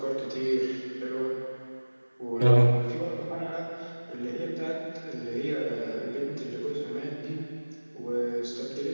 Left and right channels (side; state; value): both; inverted; correlation -1.00